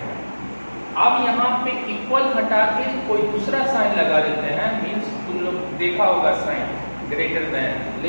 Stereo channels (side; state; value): both; inverted; correlation -1.00